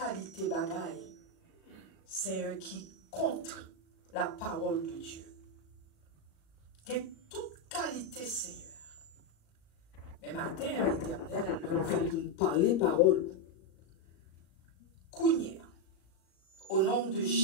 bagaille, Seigneur, qui contre la parole de Dieu. Il y a toute qualité, Seigneur. Mais matin, éternel, nous venons parler parole. Kounia, au nom de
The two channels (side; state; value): right; late; 37 ms